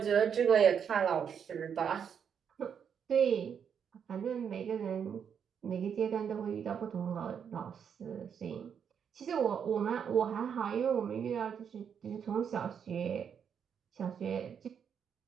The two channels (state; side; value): quieter; left; 7.6 dB